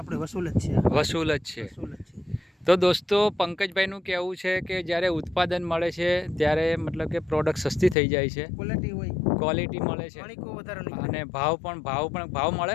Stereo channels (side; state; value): right; drops out; at 8.0 s